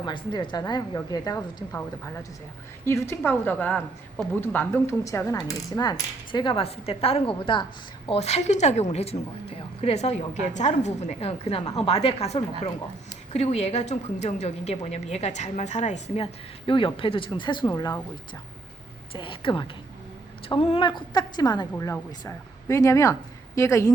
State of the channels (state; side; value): quieter; left; 3.3 dB